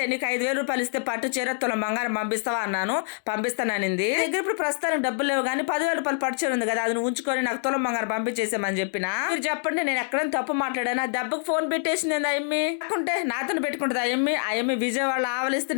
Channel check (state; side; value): silent; right; 59 dB below the other